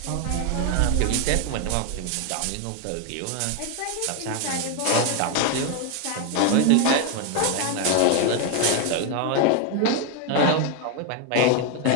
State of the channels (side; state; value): both; different; correlation 0.01